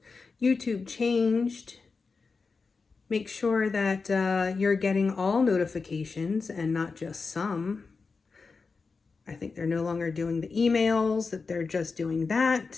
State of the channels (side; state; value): right; quieter; 4.5 dB